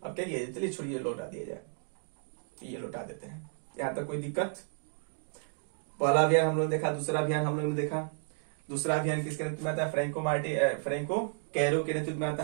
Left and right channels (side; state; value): left; silent; digital silence